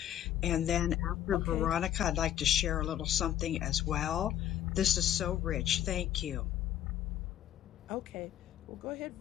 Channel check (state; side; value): quieter; right; 11.4 dB